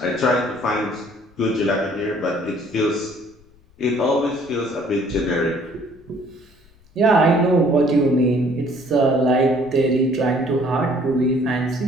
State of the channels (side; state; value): left; noise; rumble, 30 dB below the sound